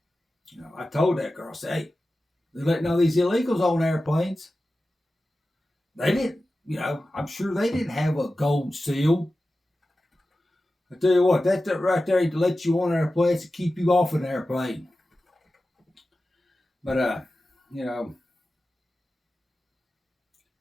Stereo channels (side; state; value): both; normal; correlation 0.94